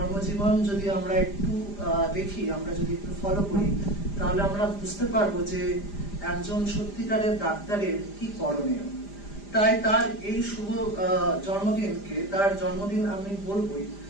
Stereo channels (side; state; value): right; late; 5.0 ms